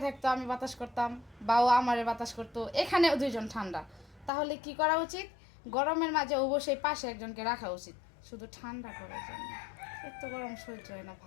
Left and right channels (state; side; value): drops out; right; at 4.3 s